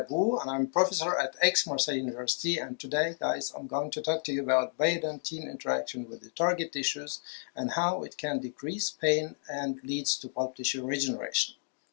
and I'm professor at Aix-Marseille University, and today guys I'm going to talk to you about biodentine interaction with the target tissues and how it can decrease pain and leads to pulp tissue regeneration.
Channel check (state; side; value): silent; right; digital silence